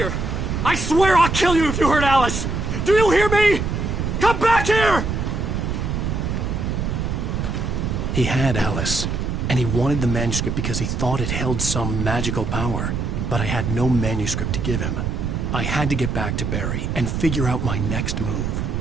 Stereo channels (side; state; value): right; noise; rumble, 1 dB below the sound